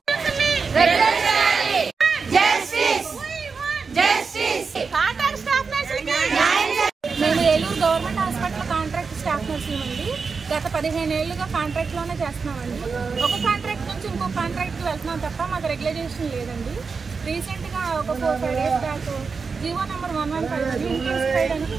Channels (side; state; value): left; quieter; 5.0 dB